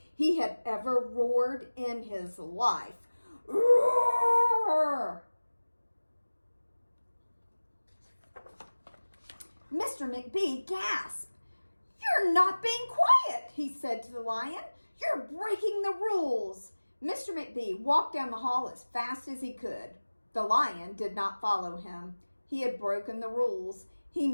he had ever roared in his life. Roar! Mr. McBee gasped. "You're not being quiet," he said to the lion. "You're breaking the rules." Mr. McBee walked down the hall as fast as he could. The lion did not follow him. He had broken the rules. He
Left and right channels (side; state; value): both; inverted; correlation -1.00